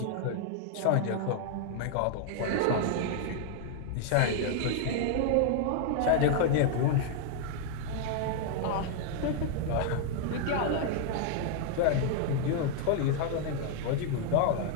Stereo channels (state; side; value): different; both; correlation 0.00